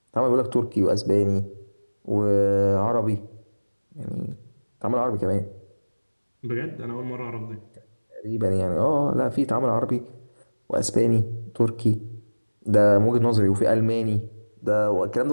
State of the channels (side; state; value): both; inverted; correlation -1.00